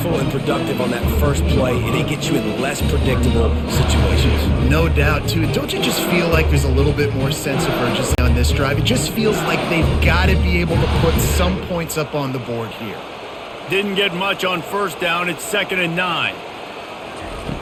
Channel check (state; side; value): identical; both; correlation 1.00